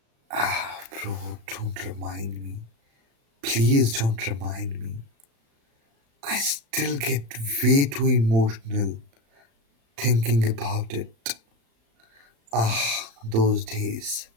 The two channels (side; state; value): left; late; 35 ms